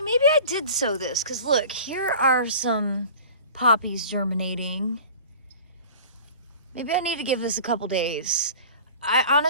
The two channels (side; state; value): both; inverted; correlation -0.40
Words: maybe I did sow this, because look, here are some poppies germinating. Maybe I need to give this a couple days.